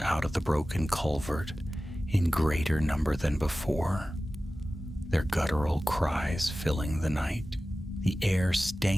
of the broken culvert in greater number than before, their guttural cries filling the night. The air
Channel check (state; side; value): normal; both; correlation 0.96